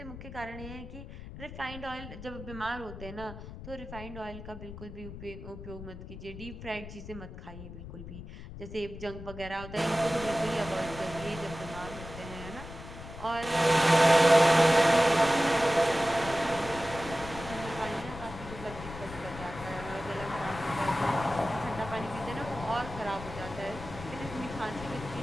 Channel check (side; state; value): left; noise; rumble, 12 dB below the sound